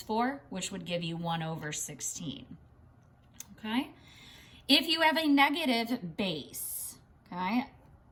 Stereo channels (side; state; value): both; identical; correlation 1.00